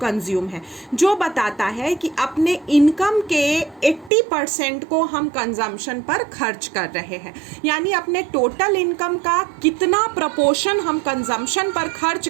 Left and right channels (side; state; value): left; drops out; at 4.1 s